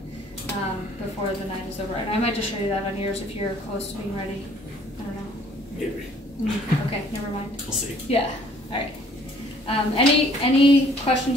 before the night is over. And I might just show you that on yours if you're close to being ready. I don't know. Maybe. Okay, never mind. We'll see. Yeah. All right. Any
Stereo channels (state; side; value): normal; both; correlation 0.58